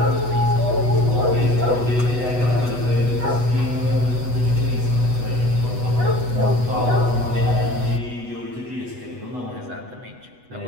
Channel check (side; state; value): left; late; 8.1 ms